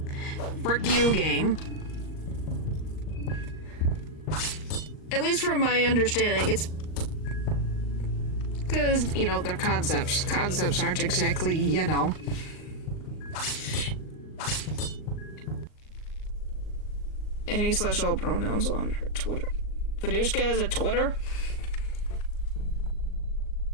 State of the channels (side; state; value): right; late; 38 ms